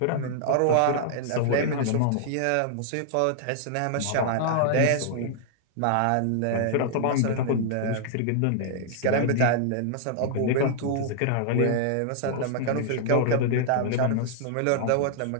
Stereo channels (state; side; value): different; both; correlation -0.01